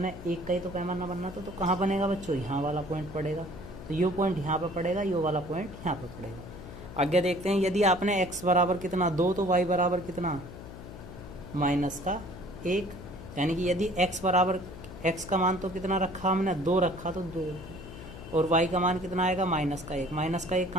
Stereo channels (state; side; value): noise; left; hum, 13 dB below the sound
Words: 1 का ही तो पैमाना बनना था, तो कहाँ बनेगा बच्चों, यहाँ वाला पॉइंट पड़ेगा। तो ये पॉइंट यहाँ पे पड़ेगा, ये वाला पॉइंट यहाँ पे पड़ेगा। आगे देखते हैं, यदि आपने x बराबर कितना 2 तो y बराबर कितना -1, यानी कि यदि x बराबर x का मान तो कितना रखा हमने 2 रखा, तो 2 और y का मान कितना आएगा -1। -1